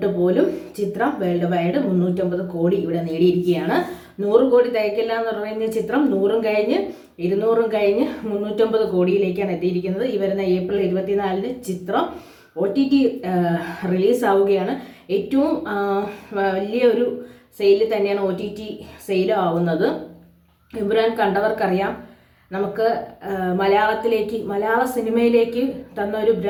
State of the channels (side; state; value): both; identical; correlation 1.00